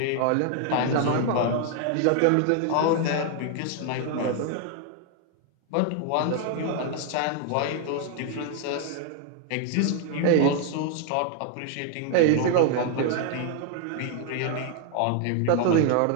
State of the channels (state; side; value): different; both; correlation 0.00